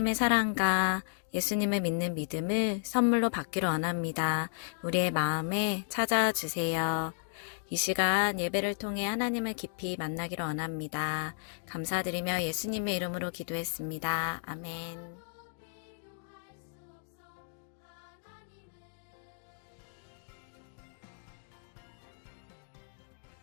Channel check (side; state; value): right; silent; digital silence